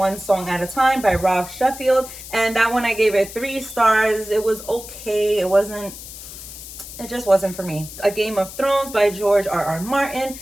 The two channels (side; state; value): left; noise; hiss, 13 dB below the sound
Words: Song at a Time by Rob Sheffield, and that one I gave it 3 stars. It was okay. It just wasn't for me. A Game of Thrones by George R.R. Martin.